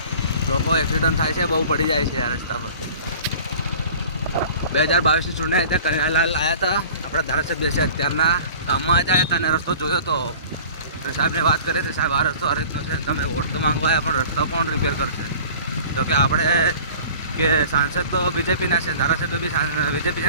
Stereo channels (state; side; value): inverted; both; correlation -0.44